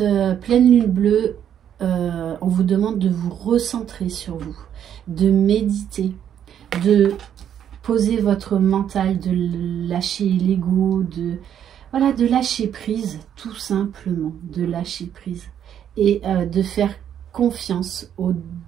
pleine lune bleue, on vous demande de vous recentrer sur vous, de méditer, de poser votre mental, de lâcher l'ego, voilà, de lâcher prise, tout simplement, de lâcher prise. Et de faire confiance au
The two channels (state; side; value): quieter; left; 9.5 dB